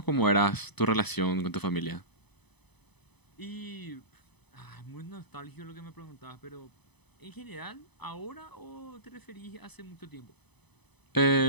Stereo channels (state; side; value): late; right; 0.99 ms